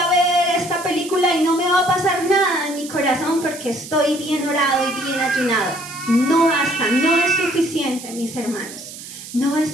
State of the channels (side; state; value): right; noise; hiss, 13 dB below the sound